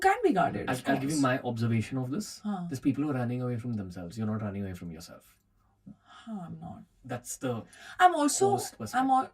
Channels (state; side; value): identical; both; correlation 1.00